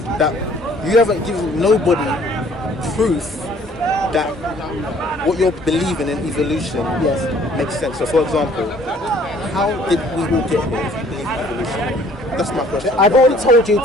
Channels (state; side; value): normal; both; correlation 0.58